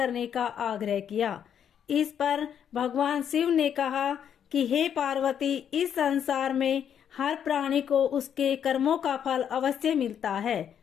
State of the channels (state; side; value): quieter; right; 8.7 dB